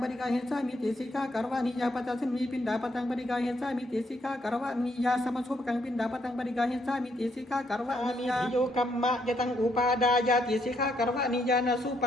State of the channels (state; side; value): normal; both; correlation 0.74